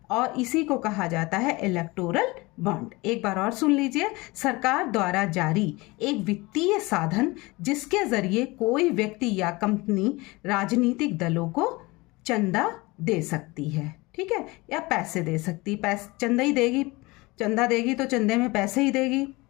और इसी को कहा जाता है इलेक्टोरल बॉन्ड। एक बार और सुन लीजिए, सरकार द्वारा जारी एक वित्तीय साधन जिसके जरिए कोई व्यक्ति या कंपनी राजनीतिक दलों को चंदा दे सकती है। ठीक है, या पैसे दे सकती, चंदा ही देगी, चंदा देगी तो चंदे में पैसे ही देगी।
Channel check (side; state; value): right; quieter; 23.2 dB